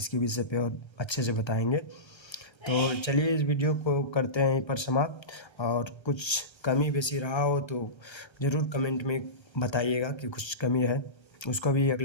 विषय पे और अच्छे से बताएंगे। तो चलिए इस वीडियो को करते हैं यहीं पर समाप्त। और कुछ कमी बेसी रहा हो तो ज़रूर कमेंट में बताइएगा कि कुछ कमी है, उसको भी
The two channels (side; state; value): right; late; 1.3 ms